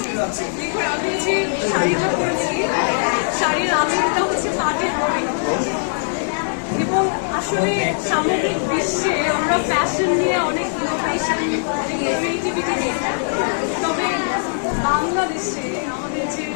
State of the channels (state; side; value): silent; right; 65 dB below the other